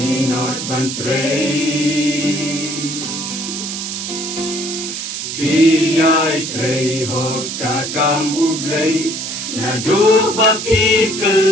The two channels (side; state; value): right; noise; hiss, 5 dB below the sound